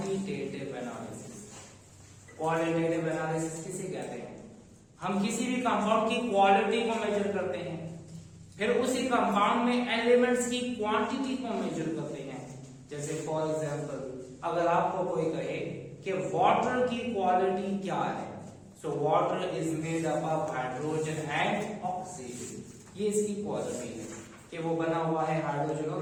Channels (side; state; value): both; identical; correlation 1.00